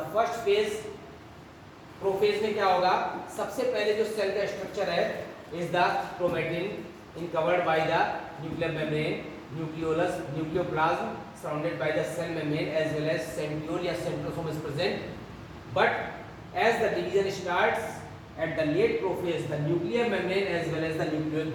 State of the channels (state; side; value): identical; both; correlation 1.00